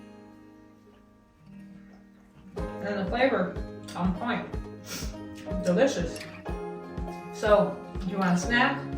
And the flavor, on point. Delicious. So, if you want a snack,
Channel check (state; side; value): identical; both; correlation 1.00